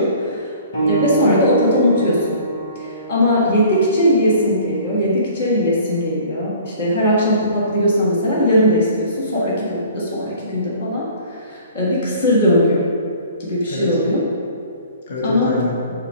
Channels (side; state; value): both; inverted; correlation -0.49